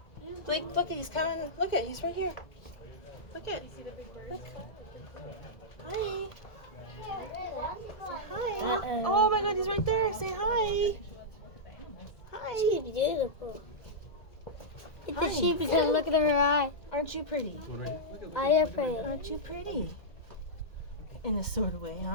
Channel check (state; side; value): late; right; 1.9 ms